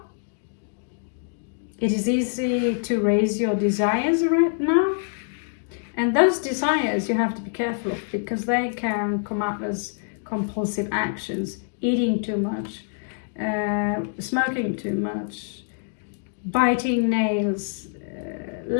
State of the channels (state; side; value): silent; right; digital silence